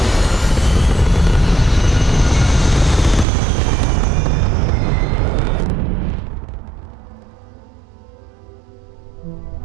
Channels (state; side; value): drops out; left; at 3.2 s